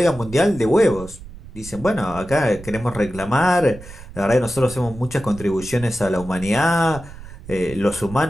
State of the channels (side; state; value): right; noise; rumble, 16 dB below the sound